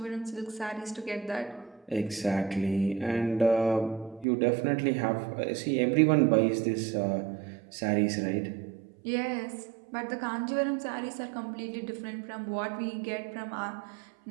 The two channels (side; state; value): left; drops out; at 4.2 s